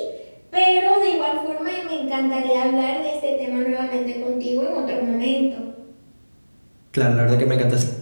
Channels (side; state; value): both; inverted; correlation -1.00